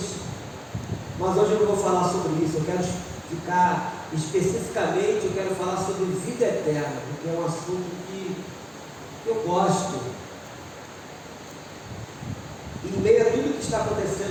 Mas hoje eu não vou falar sobre isso. Eu quero ficar especificamente, eu quero falar sobre vida eterna, porque é um assunto que eu gosto. Em meio a tudo que está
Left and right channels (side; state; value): both; identical; correlation 1.00